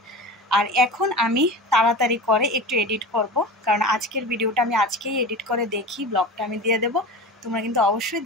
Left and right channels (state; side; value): normal; both; correlation 0.31